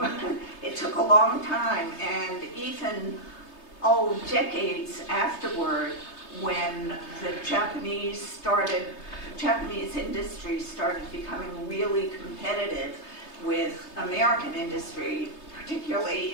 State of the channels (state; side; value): late; right; 3.3 ms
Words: It took a long time, and even, decades afterward, when the Japanese industry started becoming really competitive with American industry, particularly